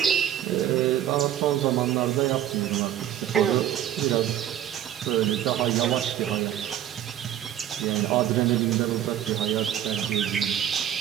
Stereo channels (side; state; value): left; quieter; 11.2 dB